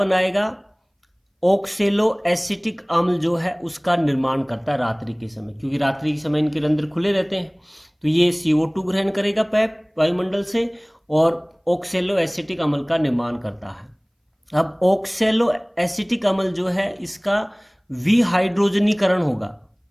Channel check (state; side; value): identical; both; correlation 1.00